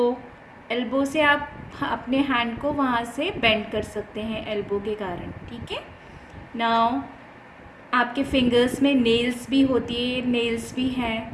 Elbow से आप अपने hand को वहाँ से bend कर सकते हैं elbow के कारण. ठीक है. Now आपके फिंगर्स में नेल्स भी होती है, नेल्स भी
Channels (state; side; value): identical; both; correlation 1.00